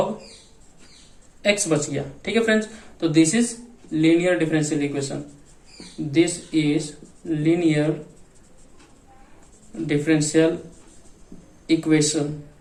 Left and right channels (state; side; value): identical; both; correlation 1.00